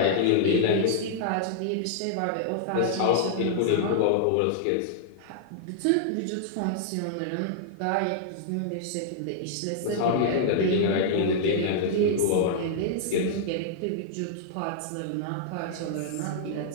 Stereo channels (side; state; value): both; different; correlation -0.01